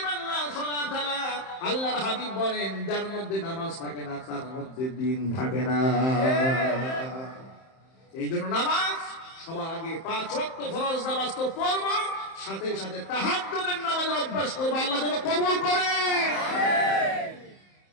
লা সালাতা লা। আল্লাহর হাবিব বলেন, যার মধ্যে নামাজ থাকে না তার মধ্যে দ্বীন থাকে না। এই জন্য নামাজ সবার আগে 5 ওয়াক্ত ফরজ নামাজ তো পড়ব, সাথে সাথে তাহাজ্জুদের নামাজের অভ্যাস করব। আল্লাহ যেন কবুল করে।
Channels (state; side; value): late; right; 31 ms